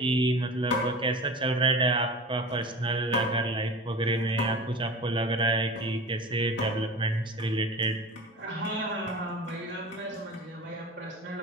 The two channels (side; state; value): both; normal; correlation 0.34